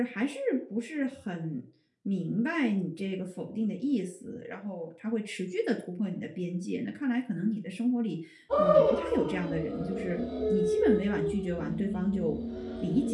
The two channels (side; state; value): both; identical; correlation 1.00